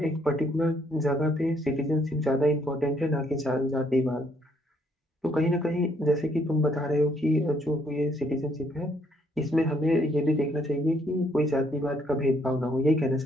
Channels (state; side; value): normal; both; correlation 0.69